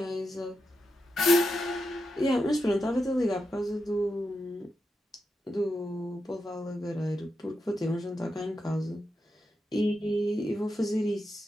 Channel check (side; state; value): both; normal; correlation 0.87